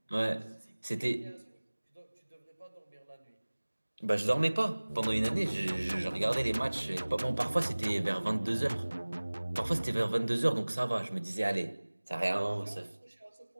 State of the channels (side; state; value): both; inverted; correlation -1.00